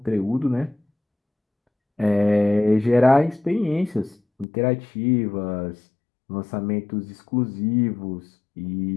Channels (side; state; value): right; drops out; at 4.5 s